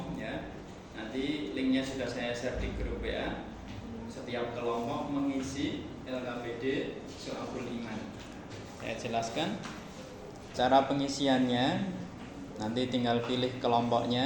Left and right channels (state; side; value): identical; both; correlation 1.00